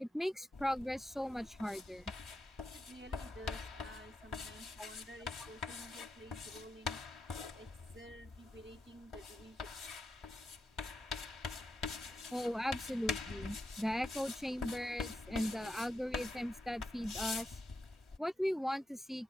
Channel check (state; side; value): normal; both; correlation 0.86